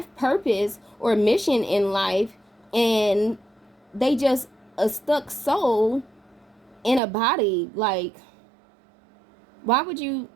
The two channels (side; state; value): left; drops out; at 7.0 s